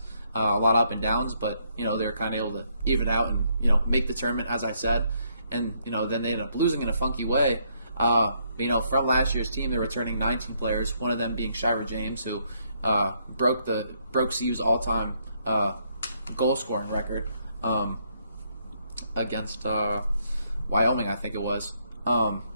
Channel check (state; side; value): inverted; both; correlation -0.73